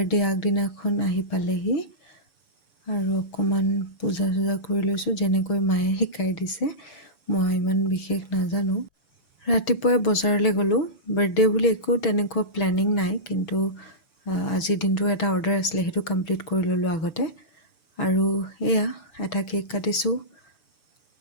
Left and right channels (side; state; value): right; late; 7.0 ms